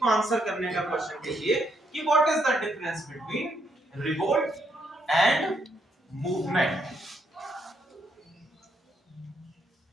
को आंसर करने का क्वेश्चन कीजिए कि what is the difference between revolt and movement.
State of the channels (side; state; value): both; normal; correlation 0.75